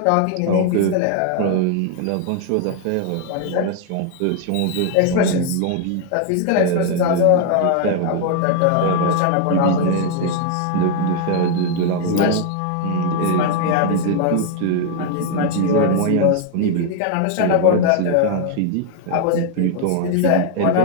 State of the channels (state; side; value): different; both; correlation 0.00